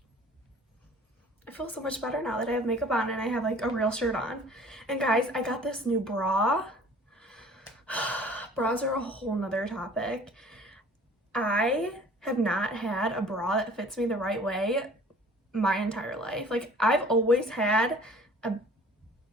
I feel so much better now that I have makeup on and I have like a real shirt on. And guys, I got this new bra. Bras are a whole nother topic. I have not had a bra that fits me the right way my entire life. Like, I've always had a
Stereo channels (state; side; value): normal; both; correlation 0.49